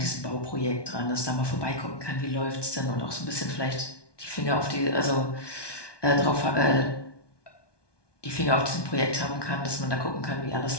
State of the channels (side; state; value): right; late; 1.2 ms